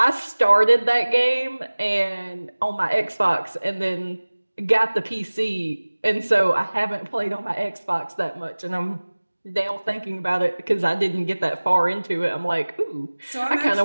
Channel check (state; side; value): inverted; both; correlation -1.00